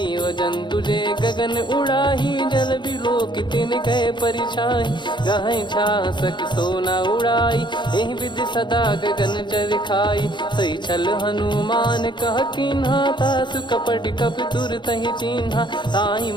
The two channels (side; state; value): right; late; 0.22 ms